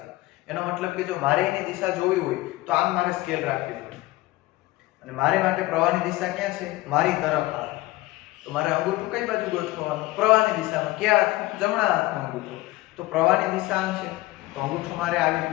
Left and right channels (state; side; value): quieter; right; 19.0 dB